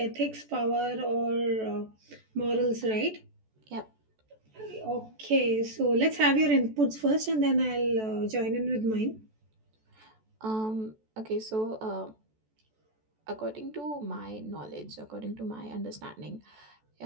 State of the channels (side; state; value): left; late; 14 ms